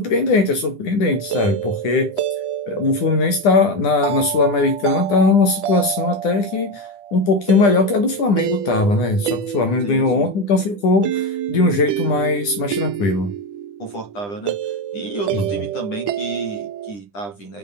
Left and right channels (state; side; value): late; right; 9.9 ms